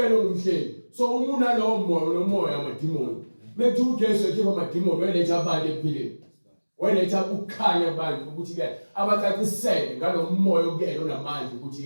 umhlebi. So umuna lo moya amadimoni. Methi uJesu ekhipha amadimoni wayeletha abantu ephileni. Wayeletha ukukhanya abantu ukuthi ke abacacisele ngalo moya okuyena onamandla ukuthi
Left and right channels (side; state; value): both; inverted; correlation -1.00